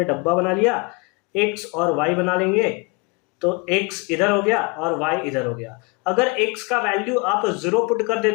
डब्बा बना लिया, x और y बना लेंगे, तो x इधर हो गया और y इधर हो गया। अगर x का वैल्यू आप 0 पुट कर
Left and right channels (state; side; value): quieter; right; 29.1 dB